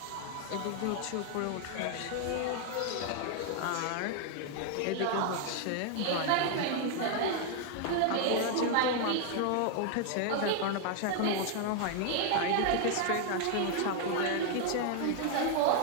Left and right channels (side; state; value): both; different; correlation 0.00